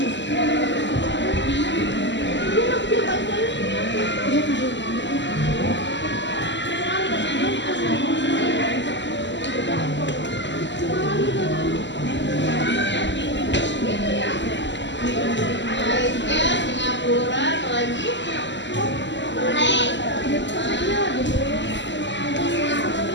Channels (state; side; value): late; right; 0.53 ms